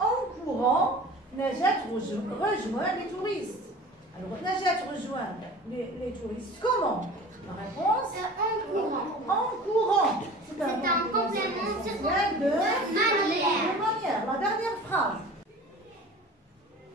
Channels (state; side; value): normal; both; correlation 0.41